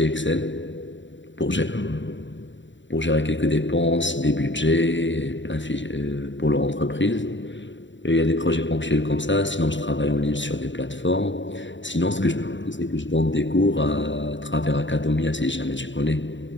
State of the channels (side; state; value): right; late; 0.54 ms